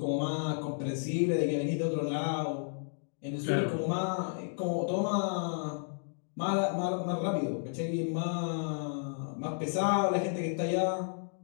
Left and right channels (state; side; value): silent; right; digital silence